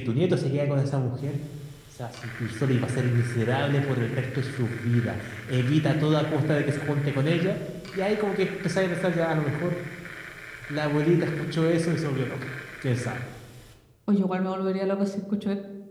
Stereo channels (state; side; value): identical; both; correlation 1.00